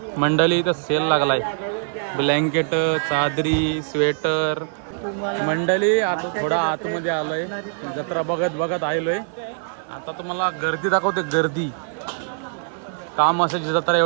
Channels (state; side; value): silent; left; 57 dB below the other